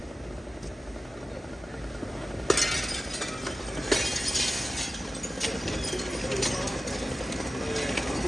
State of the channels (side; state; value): both; normal; correlation 0.93